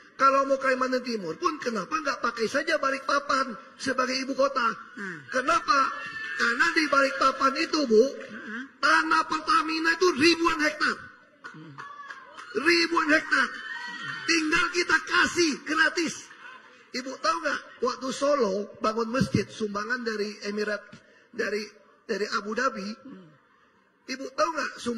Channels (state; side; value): identical; both; correlation 1.00